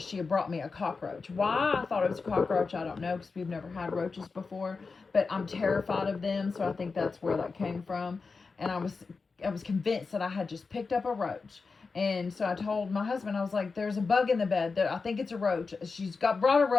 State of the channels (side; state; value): right; quieter; 4.5 dB